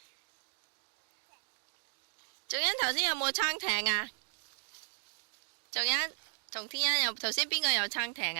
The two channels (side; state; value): left; silent; digital silence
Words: 仲欣頭先有冇撐艇啊？仲欣同天欣有頭先邊個有撐艇